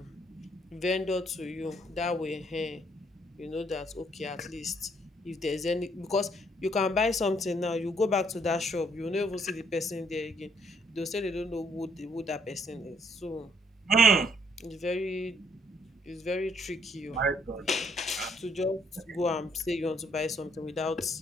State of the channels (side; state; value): both; normal; correlation 0.68